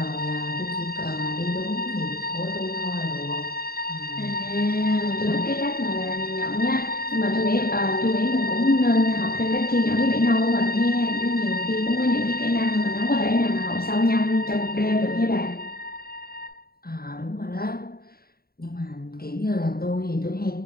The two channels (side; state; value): right; late; 0.44 ms